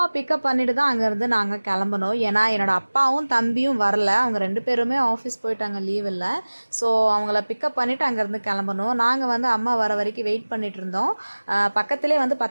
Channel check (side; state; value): both; inverted; correlation -1.00